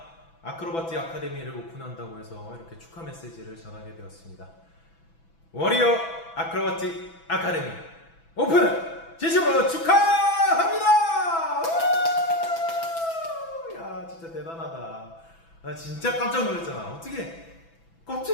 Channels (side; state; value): right; late; 6.0 ms